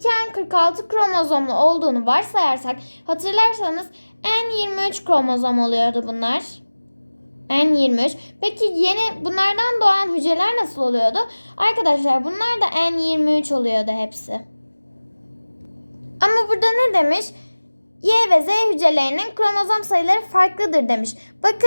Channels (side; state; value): both; inverted; correlation -1.00